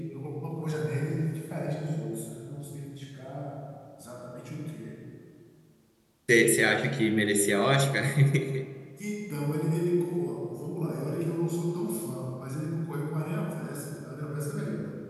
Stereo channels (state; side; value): identical; both; correlation 1.00